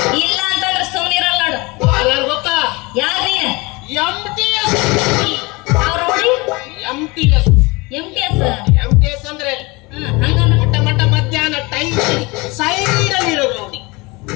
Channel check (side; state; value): right; quieter; 25.0 dB